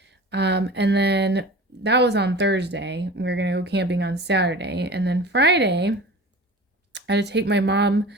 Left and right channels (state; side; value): normal; both; correlation 0.37